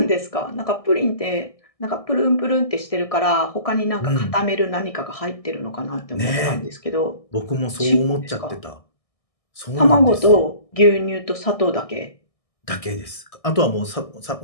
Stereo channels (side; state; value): right; late; 1.6 ms